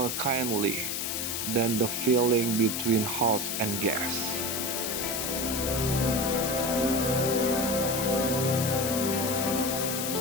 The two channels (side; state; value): left; noise; hiss, 2 dB below the sound